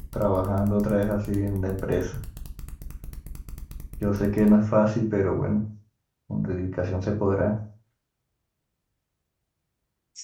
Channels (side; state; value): both; identical; correlation 1.00